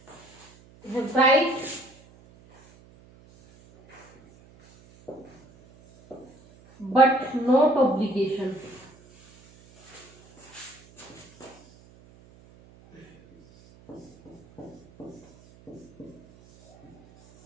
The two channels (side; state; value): right; noise; hum, 26 dB below the sound